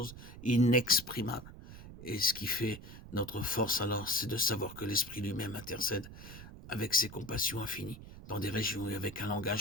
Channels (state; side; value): noise; right; rumble, 14 dB below the sound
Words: inexprimables. Et ce qui fait notre force alors, c'est de savoir que l'Esprit lui-même intercède avec ses compassions infinies dans des régions et avec un